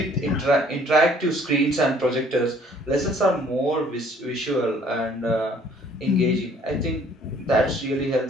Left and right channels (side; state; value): both; normal; correlation 0.59